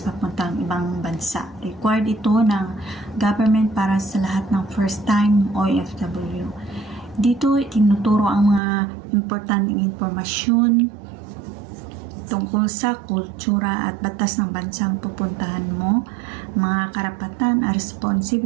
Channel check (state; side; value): drops out; left; at 8.6 s